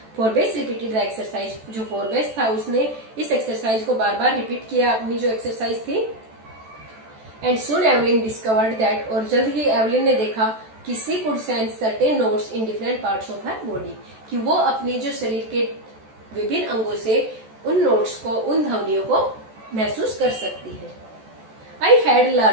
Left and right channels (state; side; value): late; left; 14 ms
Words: फॉरबेस रिपीटेड द एक्सरसाइज, जो फॉरबेस था उसने इस एक्सरसाइज को बार बार रिपीट किया, अपनी जो एक्सरसाइज थी। And soon Evelyn discovered that, और जल्द ही एवलिन ने देखा कि she could sense certain notes in different parts of her body, कि वो अपनी जो शरीर के विभिन्न अंगों से उन नोट्स को, उन ध्वनियों को महसूस कर सकती है। I had